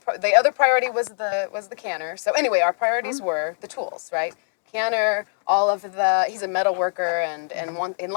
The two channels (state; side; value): silent; right; digital silence